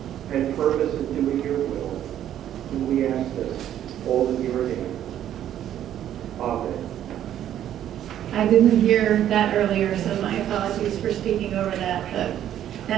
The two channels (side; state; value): left; quieter; 11.1 dB